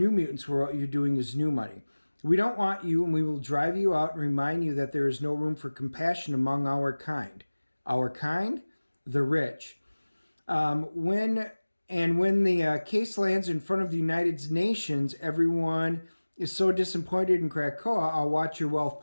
mutants, where what you're doing is new money. "We don't want you, and we will drive you out and remind you that there is no room for compassion among our kind." Our kind? The rich. When the case lands in front of the United Nations, everyone is so disappointed in KRAKOA, I'll watch your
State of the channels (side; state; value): both; inverted; correlation -1.00